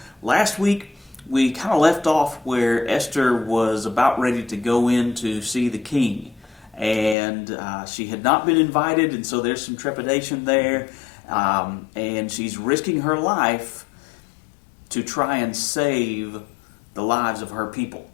last week we kind of left off where Esther was about ready to go in to see the king, and she had not been invited, and so there's some trepidation there, and she's risking her life to try and save the lives of her people.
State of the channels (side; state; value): right; drops out; at 7.2 s